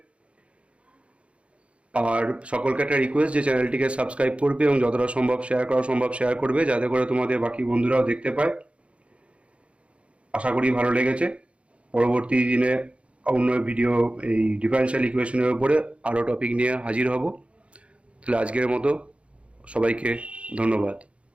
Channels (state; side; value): late; left; 0.061 ms